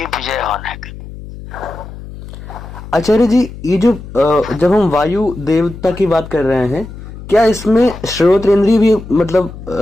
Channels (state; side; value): noise; left; hum, 14 dB below the sound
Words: विजय होने का। आचार्य जी, ये जो जब हम वायु देवता की बात कर रहे हैं, क्या इसमें श्रोतेंद्रिय भी,